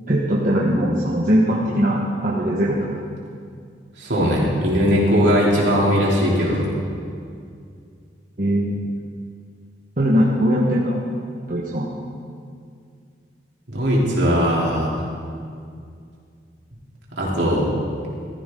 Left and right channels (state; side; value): normal; both; correlation 0.63